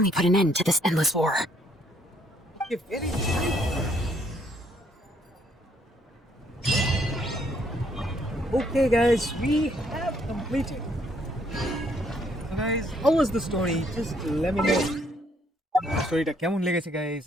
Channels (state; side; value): normal; both; correlation 0.68